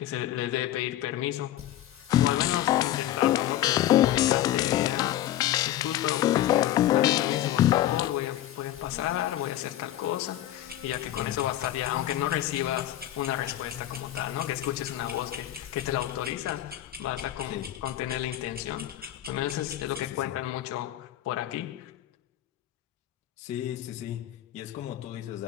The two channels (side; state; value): right; quieter; 13.1 dB